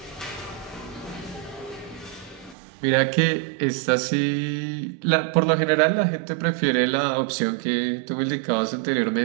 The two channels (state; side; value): drops out; left; at 2.6 s